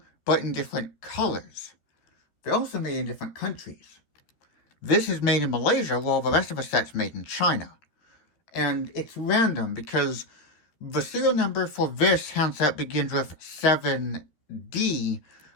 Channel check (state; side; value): late; right; 13 ms